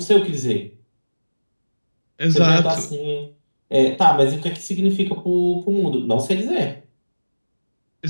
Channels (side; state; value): both; inverted; correlation -1.00